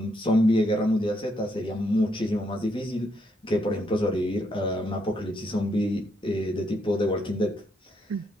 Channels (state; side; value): normal; both; correlation 0.76